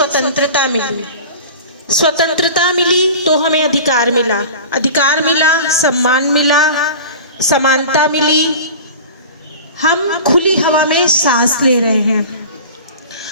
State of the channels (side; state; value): both; inverted; correlation -0.36